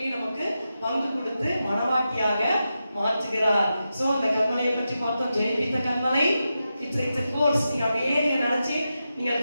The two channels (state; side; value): inverted; both; correlation -0.89